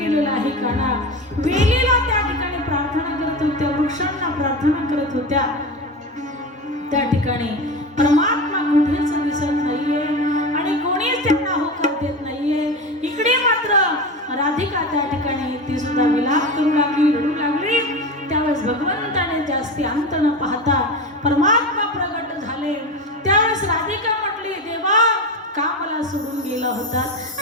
आहे काना. वेलीला त्या ठिकाणी प्रार्थना करत होत्या, वृक्षांना प्रार्थना करत होत्या. त्या ठिकाणी परमात्मा कुठेच दिसत नाहीये आणि कोणीच त्यांना होकार देत नाहीये. इकडे मात्र राधिका त्या ठिकाणी ती सुद्धा विलाप करू लागली, रडू लागली. त्यावेळेस भगवंताने जास्ती अंत न पाहता परमात्मा प्रगट झाले. त्यावेळेस राधिका म्हटली, देवा का मला सोडून गेला होता.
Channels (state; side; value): normal; both; correlation 0.24